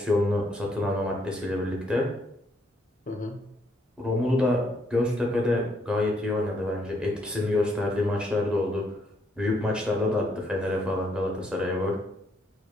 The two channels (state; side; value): normal; both; correlation 0.72